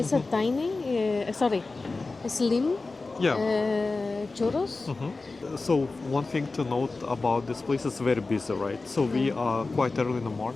a tiny, slim Yeah. churros. So one thing to note about this place is very busy, right? So we are quite early in the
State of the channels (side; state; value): right; quieter; 3.7 dB